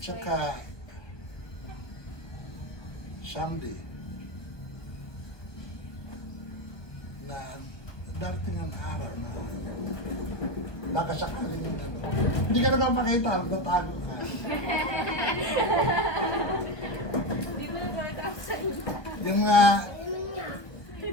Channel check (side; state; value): right; late; 1.2 ms